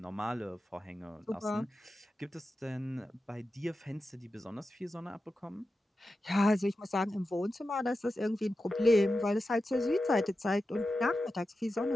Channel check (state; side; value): normal; both; correlation 0.91